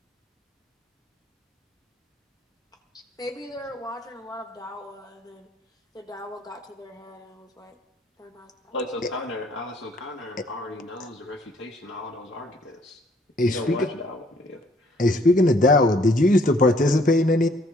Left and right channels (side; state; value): both; normal; correlation 0.63